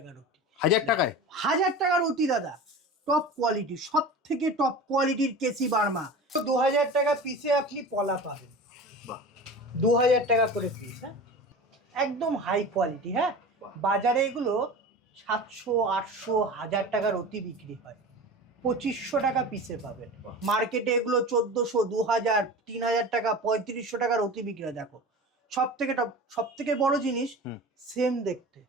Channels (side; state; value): both; normal; correlation 0.33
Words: অতি। 1000 টাকায়? 1000 টাকার অতি দাদা। টপ কোয়ালিটি, সব থেকে টপ কোয়ালিটির কেসি বার্মা। 2000 টাকা পিসে আপনি পলা পাবেন। 2000 টাকা করে পিস। হ্যাঁ, একদম হাই কোয়ালিটি। হ্যাঁ, বাজারে এগুলো 700, 800, 1000 টাকার অতি বিক্রি হয়। 2500 টাকা পিসে পাবেন। মার্কেটে এগুলো 1400, 2000, 3000 টাকা, 3500 টাকার অতি বিক্রি হয়। দেখো সব থেকে টপ, সব থেকে বড় জিনিস সেম দেখতে।